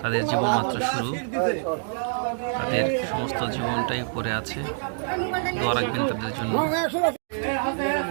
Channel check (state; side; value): silent; left; digital silence